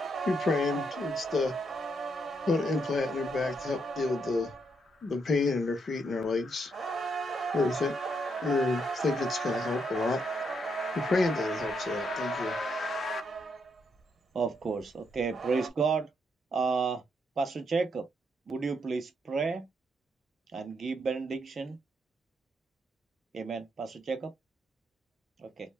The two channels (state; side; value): normal; both; correlation 0.77